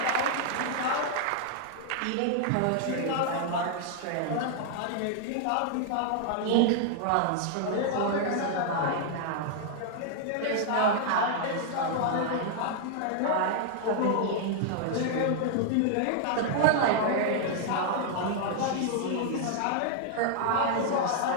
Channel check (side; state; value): both; different; correlation -0.01